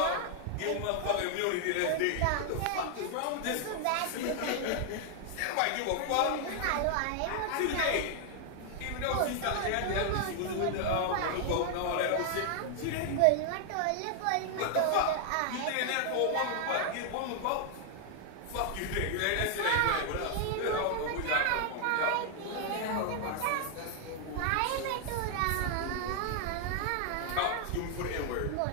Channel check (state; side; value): different; both; correlation 0.00